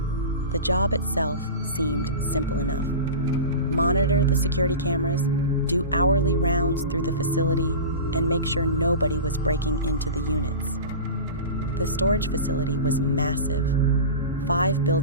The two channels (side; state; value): both; inverted; correlation -0.30